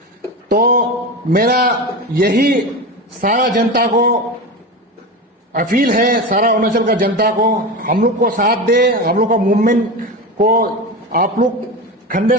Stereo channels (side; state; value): both; normal; correlation 0.23